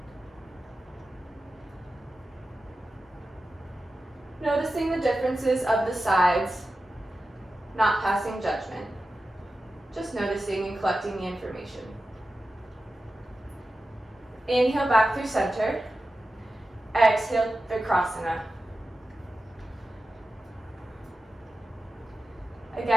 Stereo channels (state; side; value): normal; both; correlation 0.93